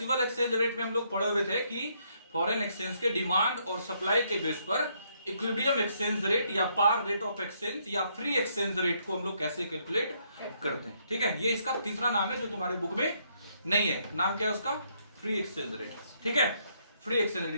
एक्सचेंज रेट में हम लोग पढ़े हुए थे कि फॉरेन एक्सचेंज के डिमांड और सप्लाई के बेस पर इक्विलिब्रियम एक्सचेंज रेट या पार रेट ऑफ एक्सचेंज या फ्री एक्सचेंज रेट को हम लोग कैसे कैलकुलेट करते हैं। ठीक है, ये इसका तीसरा नाम है जो तुम्हारे बुक में नहीं है। नाम क्या है उसका? Free exchange rate. ठीक है, फ्री एक्सचेंज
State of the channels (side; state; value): both; inverted; correlation -0.73